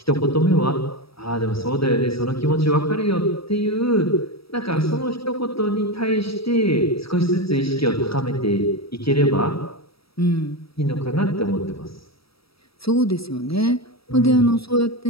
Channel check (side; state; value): right; late; 0.76 ms